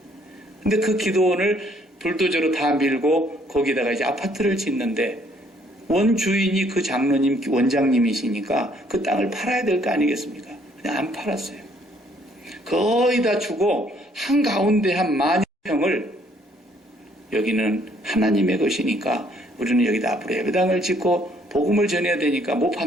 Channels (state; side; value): normal; both; correlation 0.65